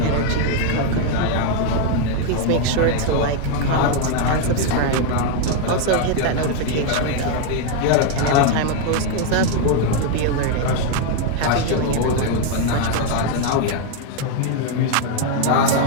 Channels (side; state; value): both; different; correlation 0.01